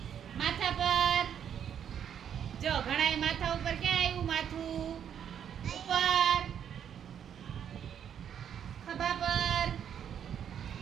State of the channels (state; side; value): quieter; left; 8.8 dB